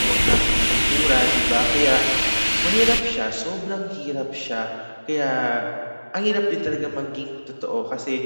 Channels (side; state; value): both; inverted; correlation -1.00